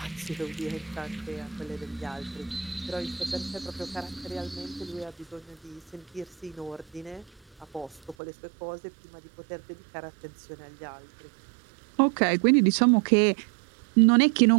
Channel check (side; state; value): left; drops out; at 8.2 s